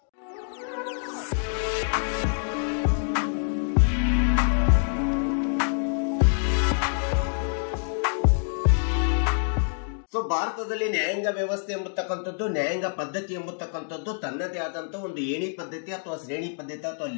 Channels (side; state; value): right; silent; digital silence